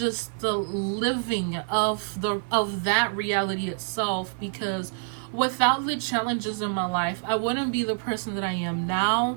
the living of that reality itself, because without the challenges in my life, I wouldn't be the person that I am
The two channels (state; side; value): silent; left; digital silence